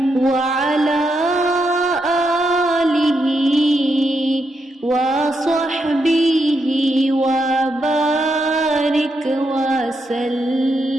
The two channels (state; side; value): normal; both; correlation 0.82